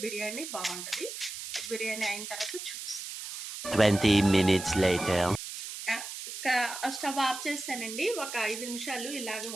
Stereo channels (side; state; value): right; noise; hiss, 8 dB below the sound